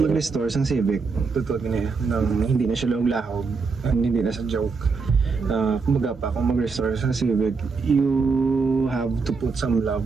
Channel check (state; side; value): quieter; left; 4.7 dB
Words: sa civic. Totoo niya nang hindi na siya lahog, hindi na sa joke. Kumbaga pa, kung mag-restore sa civic, you have to put some